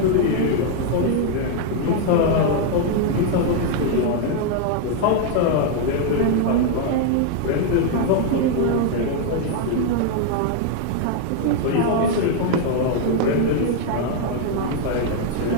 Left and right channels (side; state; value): both; different; correlation 0.00